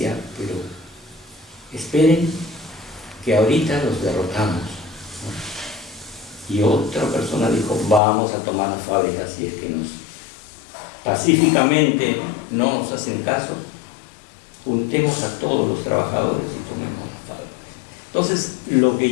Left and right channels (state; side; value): drops out; right; at 8.0 s